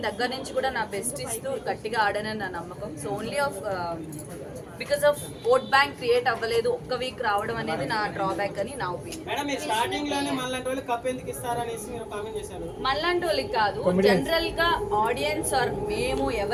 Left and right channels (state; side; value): identical; both; correlation 1.00